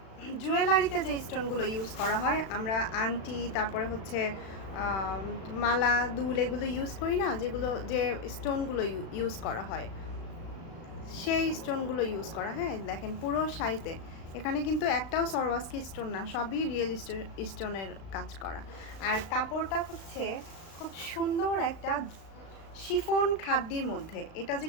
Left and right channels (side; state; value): right; late; 36 ms